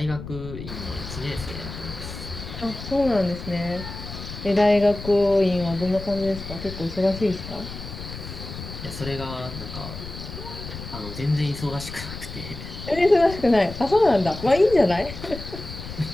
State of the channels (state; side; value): noise; left; rumble, 10 dB below the sound